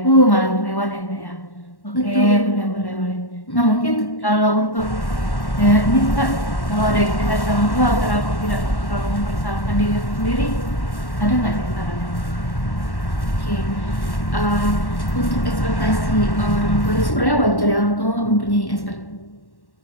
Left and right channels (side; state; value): right; late; 1.1 ms